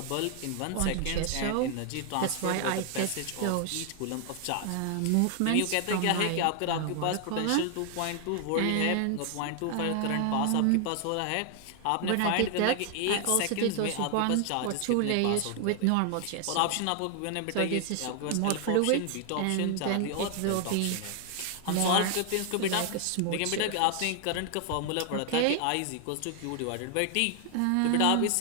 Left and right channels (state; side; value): different; both; correlation 0.00